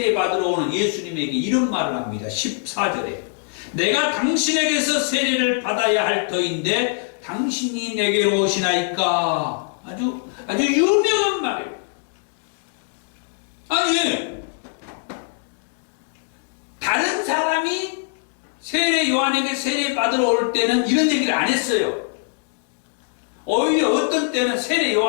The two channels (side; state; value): right; silent; digital silence